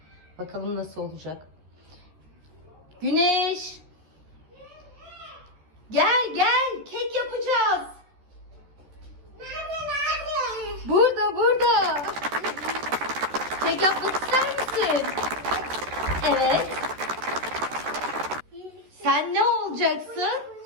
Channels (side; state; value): left; late; 13 ms